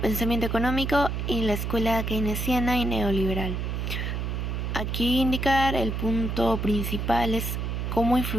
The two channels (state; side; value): noise; right; hum, 2 dB below the sound